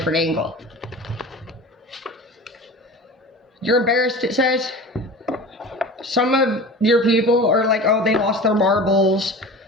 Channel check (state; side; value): normal; both; correlation 0.36